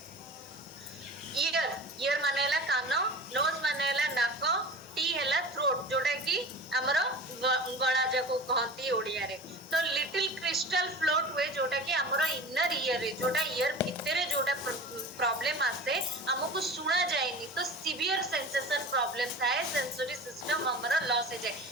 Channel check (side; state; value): both; normal; correlation 0.35